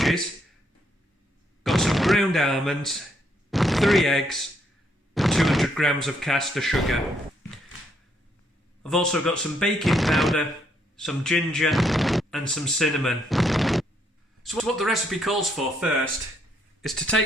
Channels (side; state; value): both; normal; correlation 0.73